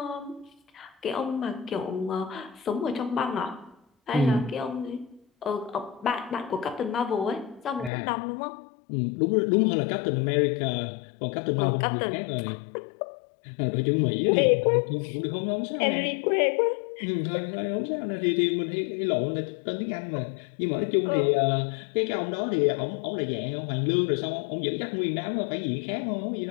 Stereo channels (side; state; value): right; drops out; at 7.9 s